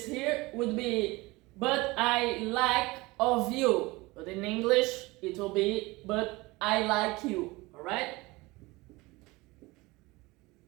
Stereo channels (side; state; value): left; quieter; 22.4 dB